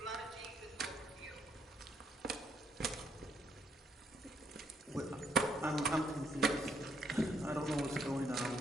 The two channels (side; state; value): both; normal; correlation 0.73